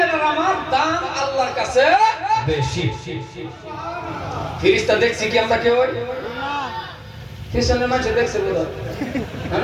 আমার দাম আল্লাহর কাছে বেশি। ফেরেশতা দেখছি কি আমরা কেউ পিছনের মাঝে দেখছে বোধ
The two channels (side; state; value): both; identical; correlation 1.00